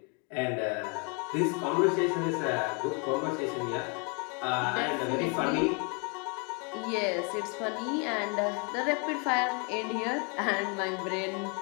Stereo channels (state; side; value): quieter; right; 35.2 dB